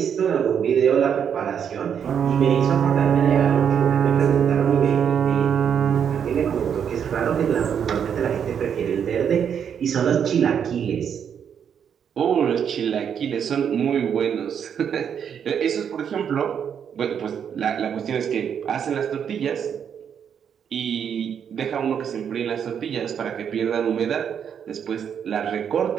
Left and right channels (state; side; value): quieter; left; 8.0 dB